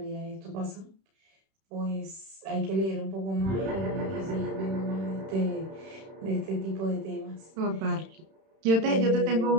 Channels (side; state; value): left; late; 31 ms